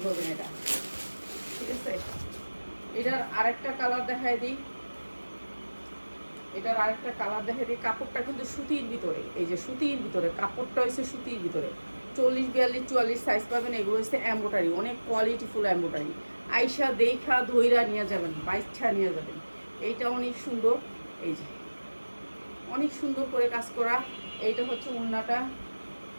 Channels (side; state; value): both; inverted; correlation -1.00